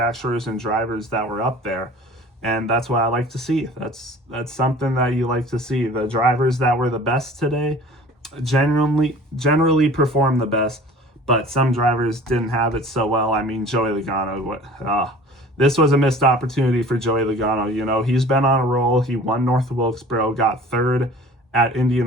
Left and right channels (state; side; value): normal; both; correlation 0.45